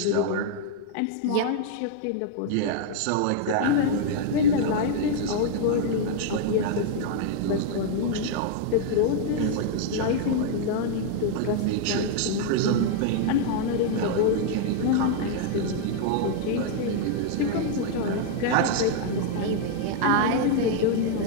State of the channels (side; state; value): both; different; correlation 0.00